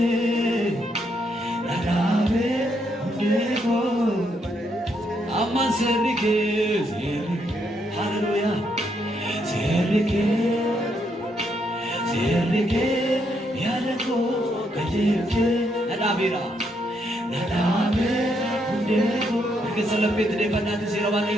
narabe undeko amma serike hallelujah serike yadeko kajeje narabe undeko keselapit de banati sirawani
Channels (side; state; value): both; normal; correlation 0.76